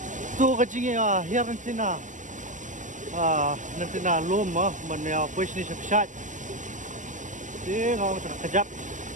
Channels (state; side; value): late; left; 0.36 ms